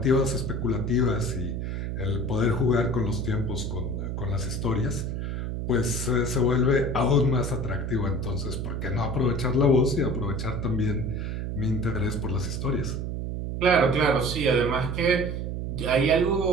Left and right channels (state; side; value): noise; right; hum, 3 dB below the sound